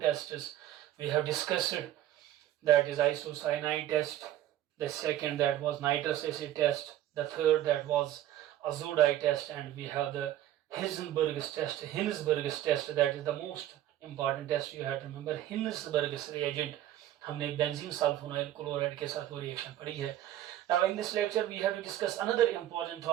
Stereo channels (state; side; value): quieter; left; 12.9 dB